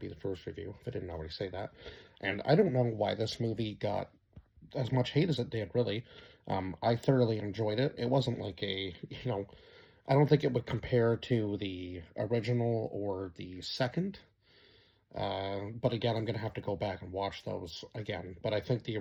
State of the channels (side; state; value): both; identical; correlation 1.00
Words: the first review, if I didn't already say that. And I don't know why this movie got as much hate as it did, really. I thoroughly enjoyed it. It wasn't like I don't think it would compare to the original or the second. But again, I'm going to have to go back and watch those again. But I think the